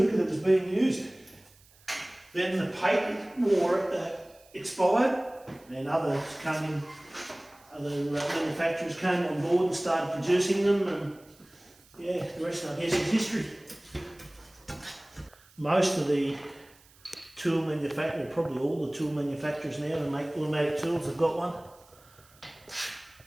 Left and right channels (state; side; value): noise; right; hiss, 28 dB below the sound